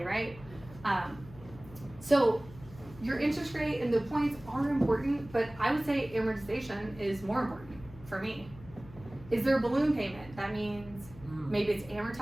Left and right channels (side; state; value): left; noise; hum, 19 dB below the sound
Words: right? So your interest rate and the points are important, but I would say amortization is more important for me. Is there a balloon payment? That means maybe it's